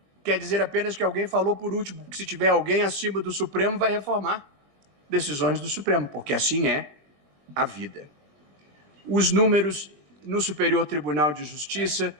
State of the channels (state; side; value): late; left; 22 ms